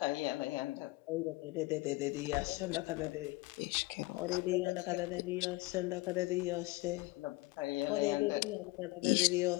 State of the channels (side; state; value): right; quieter; 22.1 dB